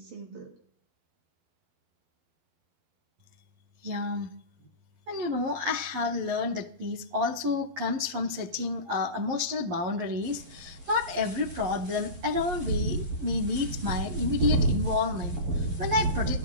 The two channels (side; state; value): left; late; 11 ms